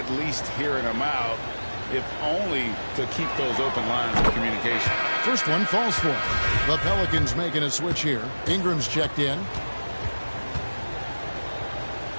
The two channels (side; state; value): both; inverted; correlation -1.00